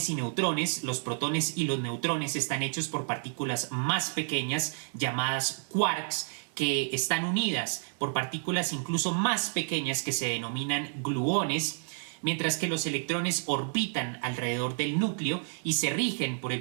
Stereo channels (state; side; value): silent; left; digital silence